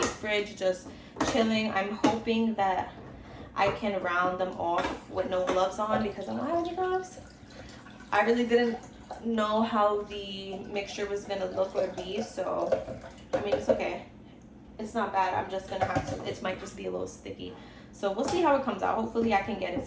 fridge just chilling. I'm hoping that I can round them off with no gloves on because I don't have any gloves. I really didn't know how the mixture was gonna look or be, so I mean it's okay. It's not bad. I'm just gonna have to, it might just be a little sticky. So we'll see how it comes out. Hopefully I can get it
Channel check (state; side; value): identical; both; correlation 1.00